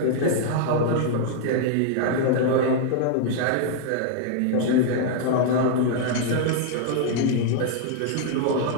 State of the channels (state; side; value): different; both; correlation -0.01